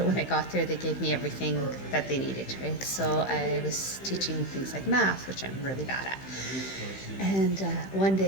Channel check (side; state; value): right; late; 15 ms